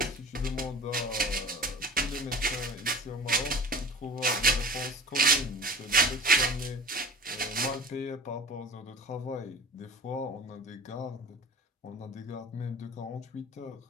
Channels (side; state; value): both; normal; correlation 0.40